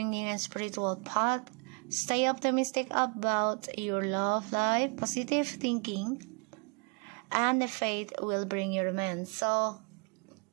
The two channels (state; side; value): quieter; left; 35.1 dB